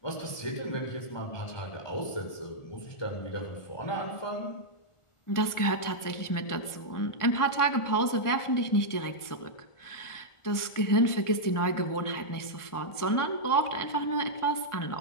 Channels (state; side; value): late; right; 1.5 ms